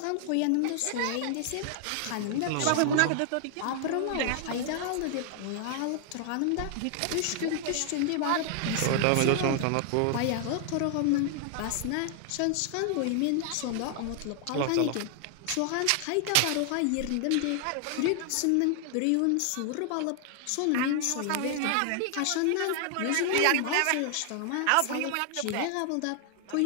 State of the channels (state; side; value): different; both; correlation 0.00